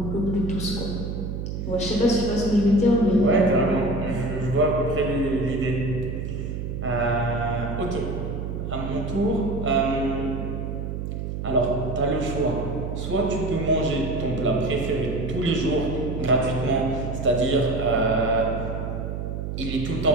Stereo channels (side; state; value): right; noise; hum, 4 dB below the sound